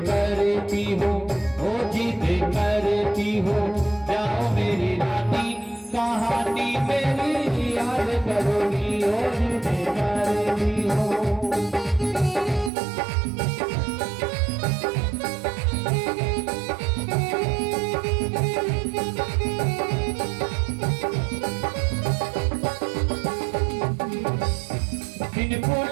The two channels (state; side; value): drops out; left; at 12.7 s